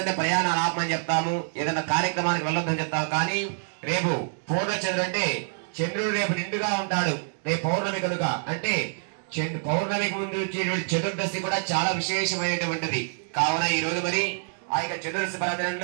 అంటే ప్రయాణాలు ఆపమని చెప్తాము, ఏదైనా కార్యక్రమానికి వెళ్ళొద్దని చెప్తాము. కానీ రేపు పూర్ణచంద్రుడు అంటే చంద్రుడు రేపు నిండుగా ఉంటాడు. రేపు పౌర్ణమి కనుక అంటే పౌర్ణమికి ముందు వచ్చేటువంటి చతుర్దశి కూడా చాలా విశేషమైనటువంటిది. కావున ఈ రోజు మరి ఆ యొక్క చతుర్దశి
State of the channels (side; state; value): left; silent; digital silence